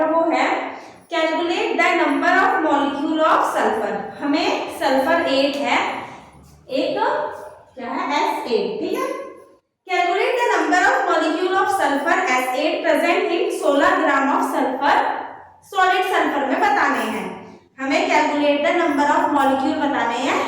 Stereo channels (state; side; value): identical; both; correlation 1.00